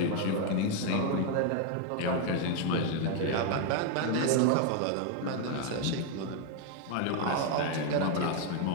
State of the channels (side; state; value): both; different; correlation 0.01